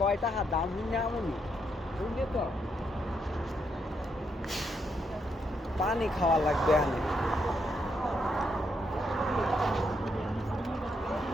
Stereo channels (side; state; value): both; normal; correlation 0.78